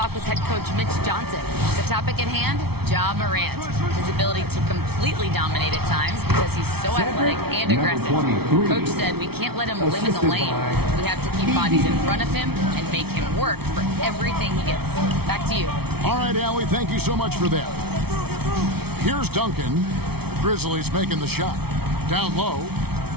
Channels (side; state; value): left; late; 0.96 ms